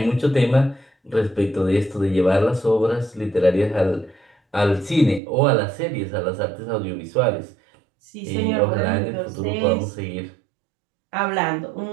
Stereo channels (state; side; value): drops out; left; at 5.2 s